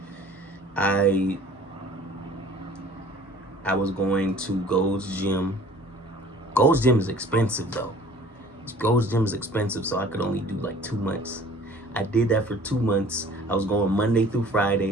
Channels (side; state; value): both; normal; correlation 0.49